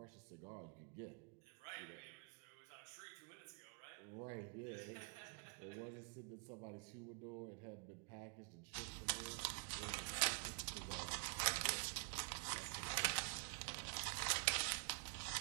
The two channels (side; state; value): left; quieter; 39.8 dB